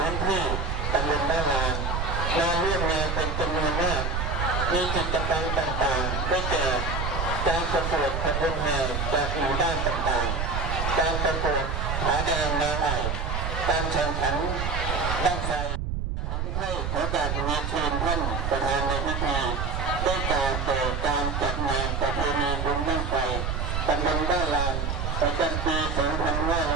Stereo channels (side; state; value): right; noise; rumble, 1 dB below the sound